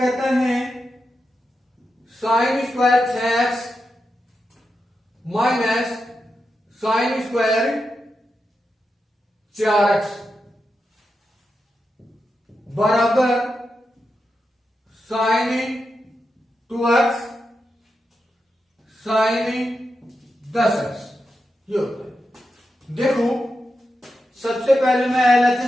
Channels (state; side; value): normal; both; correlation 0.88